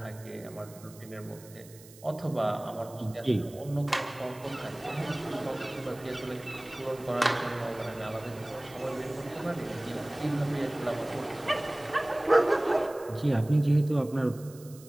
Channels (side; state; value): right; noise; hiss, 21 dB below the sound